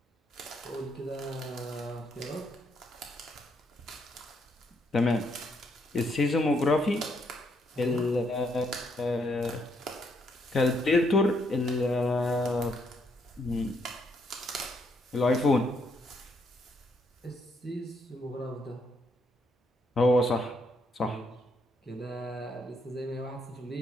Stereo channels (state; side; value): normal; both; correlation 0.74